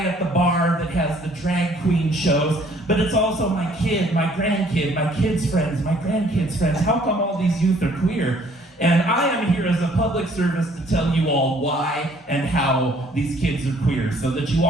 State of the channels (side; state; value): both; normal; correlation 0.60